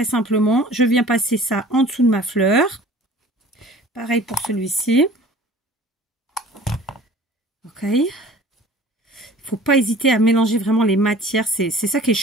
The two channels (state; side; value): normal; both; correlation 0.46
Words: simplement. Je viens passer ça en dessous de ma fleur. Pareil pour celui-ci. Ok. Il ne faut pas hésiter à mélanger vraiment les matières. C'est ça qui est